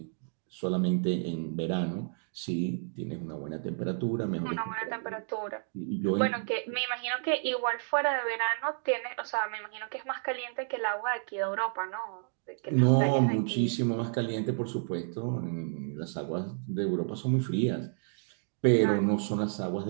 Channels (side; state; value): left; silent; digital silence